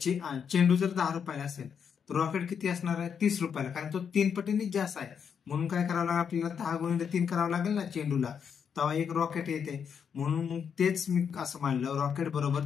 चेंडू जर 10 रुपयाला असेल तर रॉकेट किती असणार आहे 30 रुपयाला कारण तो 3 पटीने जास्त आहे. म्हणून काय करावं लागेल आपल्याला 10 गुणिले 3 करावं लागेल ना चेंडूला तेव्हा एक रॉकेट येते. म्हणून मग तेच मी असं मानलं रॉकेट बरोबर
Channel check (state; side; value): quieter; right; 7.2 dB